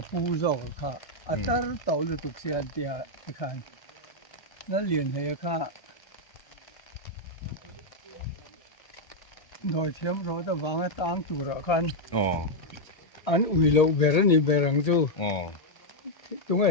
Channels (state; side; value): late; right; 1.3 ms